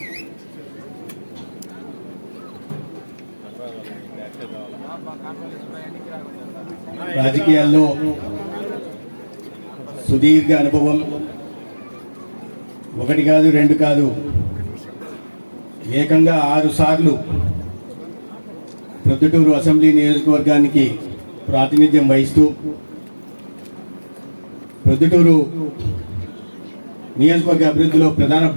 రాజకీయాల్లో సుదీర్ఘ అనుభవం, ఒకటి కాదు, రెండు కాదు, ఏకంగా 6 సార్లు ప్రొద్దుటూరు అసెంబ్లీ నియోజకవర్గానికి ప్రాతినిధ్యం వహిస్తూ, ప్రొద్దుటూరు నియోజకవర్గ అభివృద్ధిలో ప్రధాన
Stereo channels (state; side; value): inverted; both; correlation -1.00